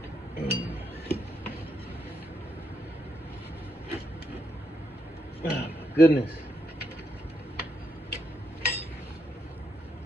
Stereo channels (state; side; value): normal; both; correlation 0.79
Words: Oh my goodness.